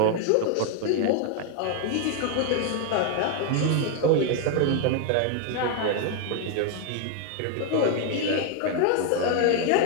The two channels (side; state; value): both; different; correlation 0.01